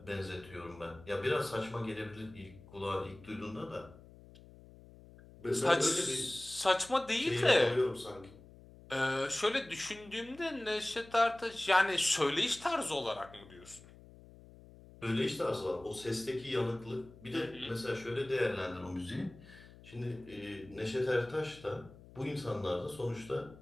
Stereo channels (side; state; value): left; noise; hum, 21 dB below the sound